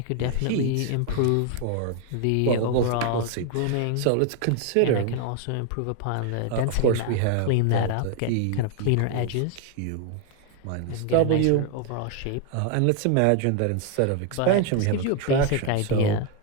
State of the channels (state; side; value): different; both; correlation 0.00